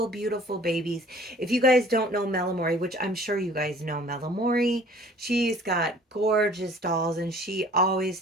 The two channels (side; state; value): both; normal; correlation 0.51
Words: beautiful babies. If you guys don't know Amorè, which I'm sure you guys know Amorè, she's got gorgeous dolls and she always